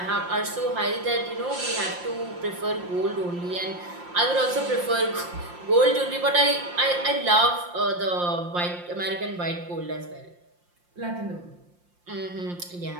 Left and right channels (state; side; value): late; left; 5.7 ms